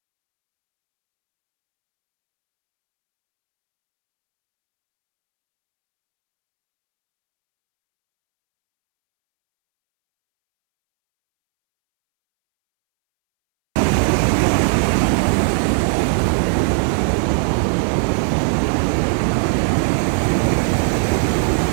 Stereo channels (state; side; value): silent; left; 66 dB below the other